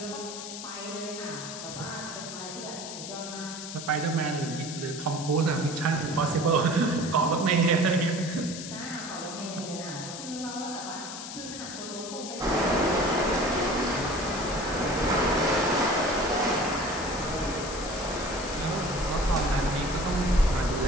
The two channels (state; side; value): noise; left; hiss, 9 dB below the sound